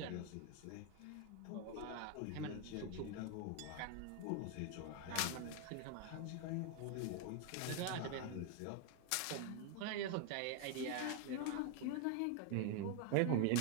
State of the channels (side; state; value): both; different; correlation 0.01